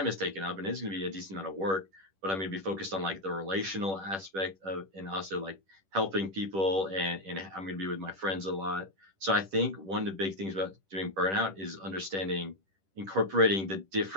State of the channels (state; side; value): late; left; 10 ms